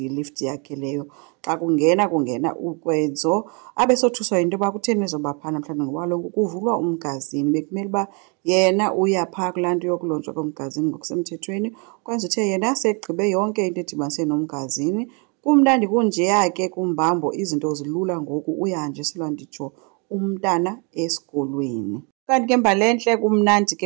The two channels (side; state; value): left; quieter; 34.3 dB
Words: yilift yakhe leyo. Xa kungena ukwenzo abesothuswa yinto yoba kutheni ezoba phaa namhlanje ngoba kaloku kuvulwa umgazini. Bekumele uba yena uya phaa kulaa nto yokulunjwa komgazini ngokusemthethweni. Kwenza uthe yena segqibe yonke into edibanise nomgazini. Kumnandi kunjeya ke kumbambo, izinto zilula ngoku, uyahanjiselwa nditsho umntana esikolweni. Kanti ke mbalentle kumnandi